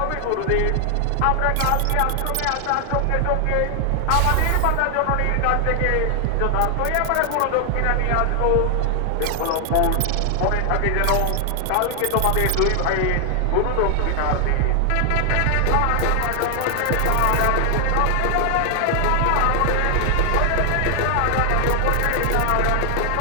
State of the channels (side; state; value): both; different; correlation 0.00